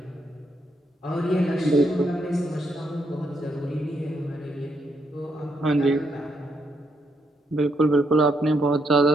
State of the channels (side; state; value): both; normal; correlation 0.77